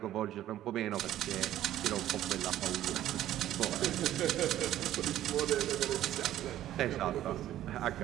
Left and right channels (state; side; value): quieter; left; 12.8 dB